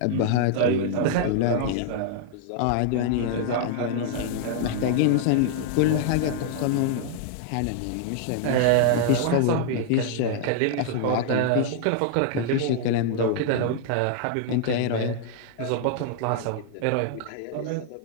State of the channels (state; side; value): different; both; correlation 0.00